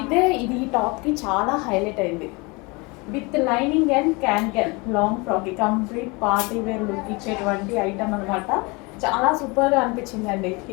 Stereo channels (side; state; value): right; quieter; 27.2 dB